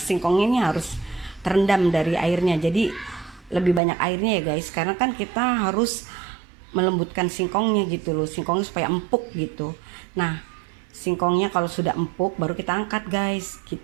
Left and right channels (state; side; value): drops out; left; at 3.8 s